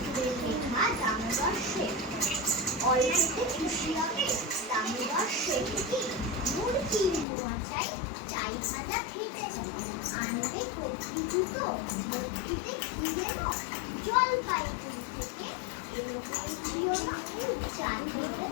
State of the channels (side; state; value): right; drops out; at 7.2 s